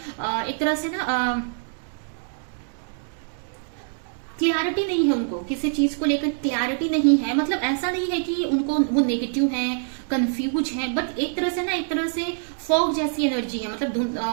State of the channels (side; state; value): left; silent; digital silence